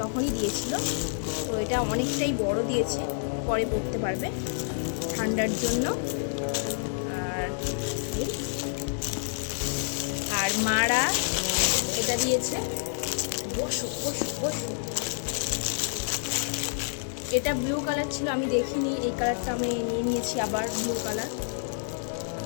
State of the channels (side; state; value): right; silent; 59 dB below the other